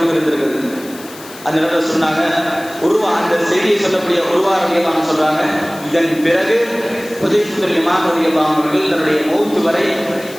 இருந்திருக்கிறது. அந்த நேரத்தில் சொன்னாங்க, அந்த செய்தியை சொல்லக்கூடிய உருவா ரலியல்லாஹு சொல்றாங்க, இதன் பிறகு ஹுதைஃபா பின் யமான் ரலியல்லாஹு அவர்கள் தன்னுடைய மௌத் வரை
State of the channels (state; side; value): noise; left; hiss, 18 dB below the sound